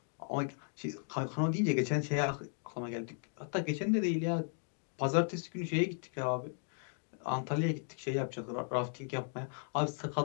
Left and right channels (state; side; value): silent; right; 54 dB below the other